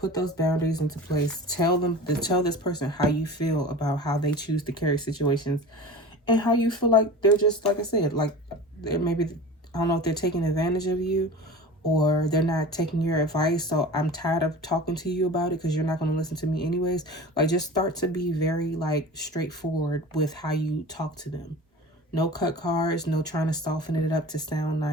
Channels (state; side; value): normal; both; correlation 0.35